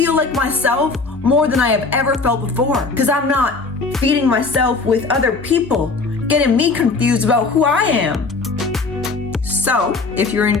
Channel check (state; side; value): quieter; right; 4.0 dB